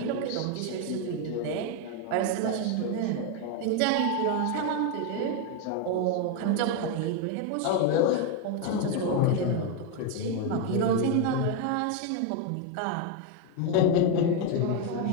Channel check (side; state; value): both; different; correlation 0.01